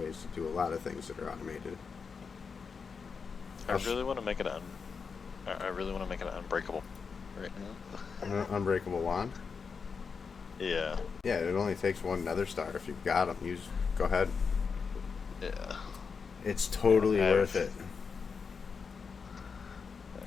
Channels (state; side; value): quieter; right; 5.5 dB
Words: to do a lot of things that are automated. I really want to make it I really want to make it unbreakable right now. An unbreakable wand? Yeah. Yeah, it only takes one nether star if you've got them. Go ahead. Yeah. It's totally worth it.